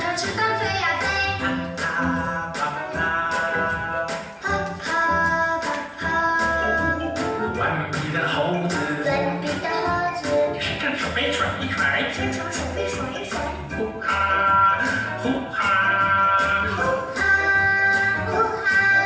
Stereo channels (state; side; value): identical; both; correlation 1.00